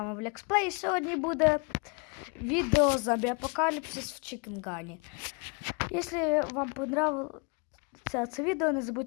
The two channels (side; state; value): right; quieter; 33.8 dB